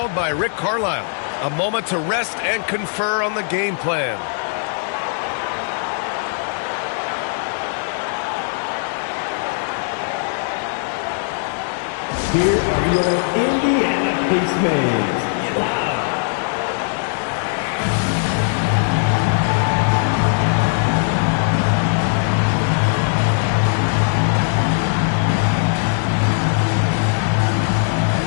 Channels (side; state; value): right; silent; 61 dB below the other